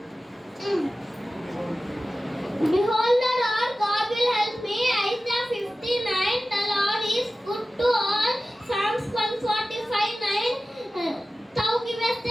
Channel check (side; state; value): both; normal; correlation 0.96